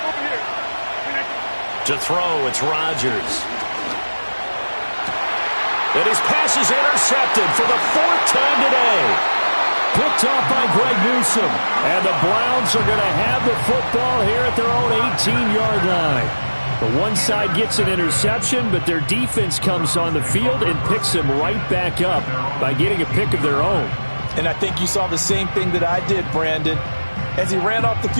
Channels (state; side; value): inverted; both; correlation -1.00